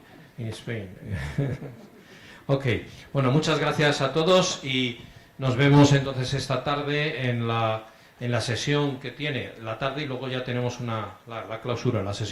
en España. Ok, bueno, muchas gracias a todos y nos vemos entonces esta tarde en la sesión que tiene la tarde, y luego ya tenemos la clausura. La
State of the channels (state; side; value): identical; both; correlation 1.00